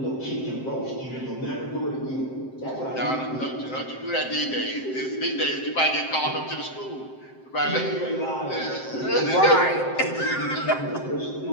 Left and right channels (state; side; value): late; right; 7.7 ms